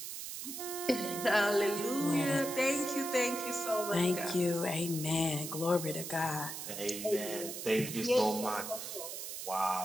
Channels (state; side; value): noise; right; hiss, 7 dB below the sound